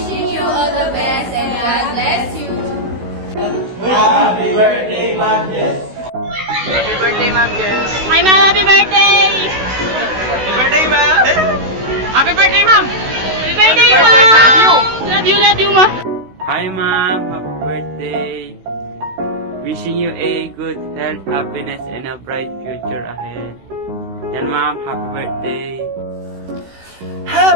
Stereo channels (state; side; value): late; left; 16 ms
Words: you all the best and God bless you. Happy birthday, Ma'am Jess. Happy birthday, Ma'am Jess. Hi, Mom! Happy birthday! Happy birthday, Ma'am. Happy birthday, Mom! Happy birthday, Happy birthday, Mom! love you. Love you, Ma! Hi ma'am, happy birthday. Wishing you a good health, happiness, and a bright future ahead. Yan ma'am, happy birthday.